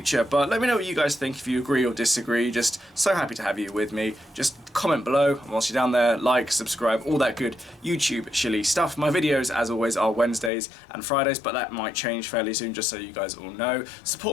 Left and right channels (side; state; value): right; drops out; at 10.5 s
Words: But let me know what you guys think, if you agree or disagree. Just so happy to have you with me. Just comment below, and whilst you're down there, like, subscribe, all that good YouTube shilly stuff. My videos, as always, are Wednesdays and Fridays, but that might change fairly soon, just so you guys all know.